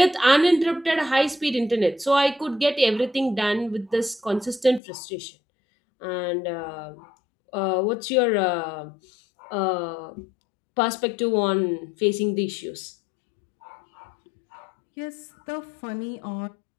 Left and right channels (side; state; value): right; drops out; at 4.8 s